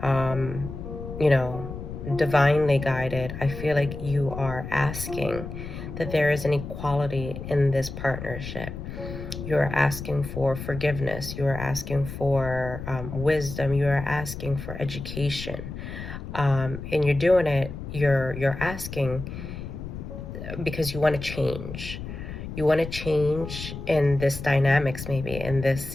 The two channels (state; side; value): noise; left; rumble, 9 dB below the sound